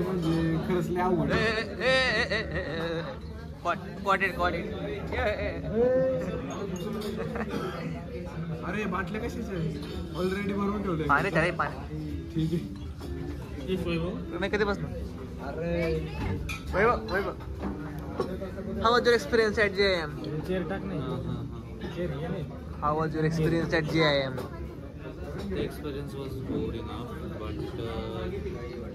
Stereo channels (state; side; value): identical; both; correlation 1.00